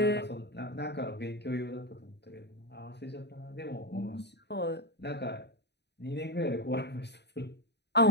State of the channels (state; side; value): late; right; 0.50 ms